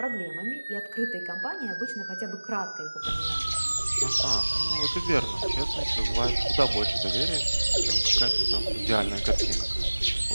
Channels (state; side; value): inverted; both; correlation -1.00